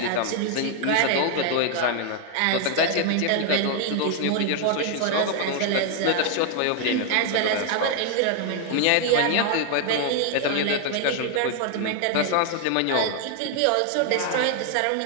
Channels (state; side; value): different; both; correlation 0.00